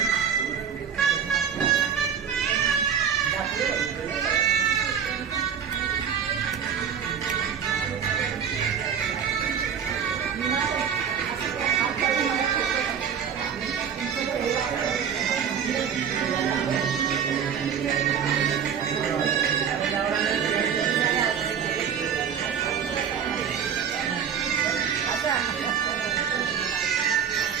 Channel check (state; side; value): quieter; left; 7.7 dB